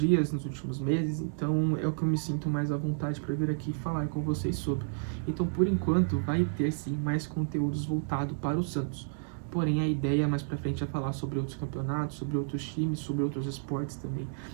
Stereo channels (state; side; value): silent; left; digital silence